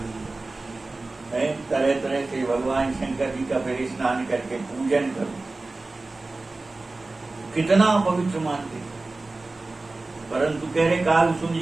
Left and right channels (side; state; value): left; quieter; 3.3 dB